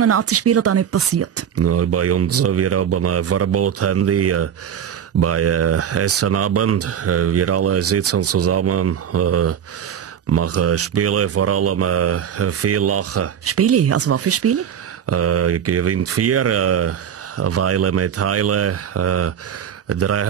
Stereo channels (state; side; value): quieter; left; 8.7 dB